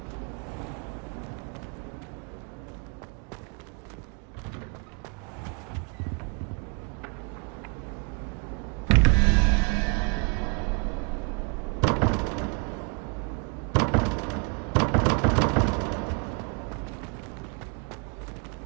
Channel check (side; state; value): left; quieter; 35.3 dB